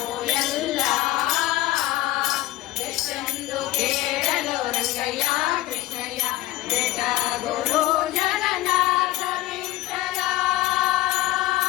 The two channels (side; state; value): right; quieter; 16.1 dB